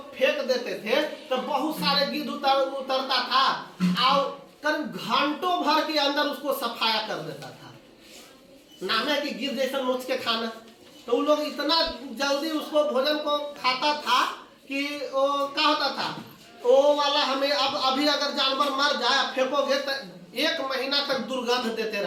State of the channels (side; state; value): both; identical; correlation 1.00